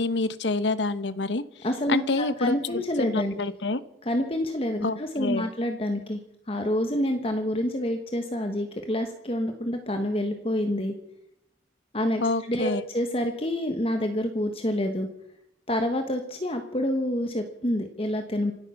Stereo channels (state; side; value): normal; both; correlation 0.55